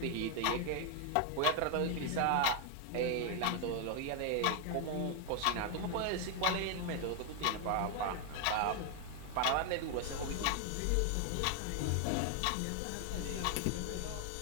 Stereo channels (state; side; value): different; both; correlation 0.00